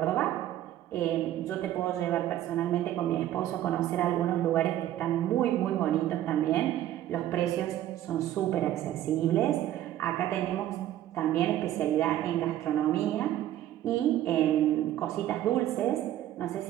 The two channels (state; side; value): quieter; left; 12.8 dB